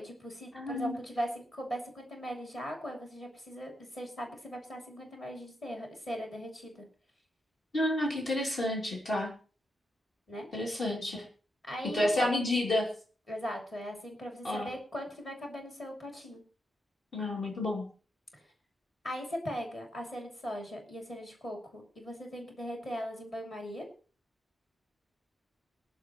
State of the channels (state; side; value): normal; both; correlation 0.82